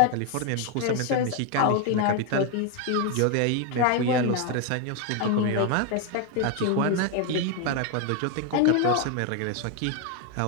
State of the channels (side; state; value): both; different; correlation 0.01